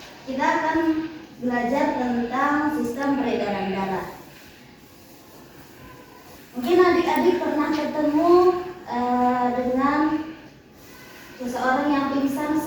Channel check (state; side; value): identical; both; correlation 1.00